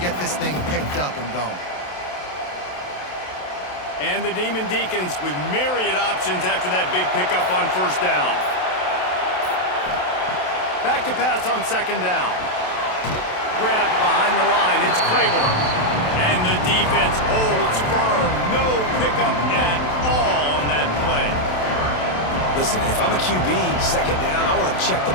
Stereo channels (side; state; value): right; late; 27 ms